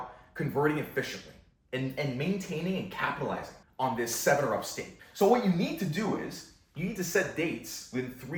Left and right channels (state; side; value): identical; both; correlation 1.00